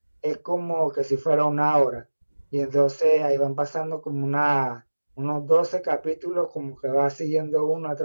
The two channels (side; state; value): both; inverted; correlation -1.00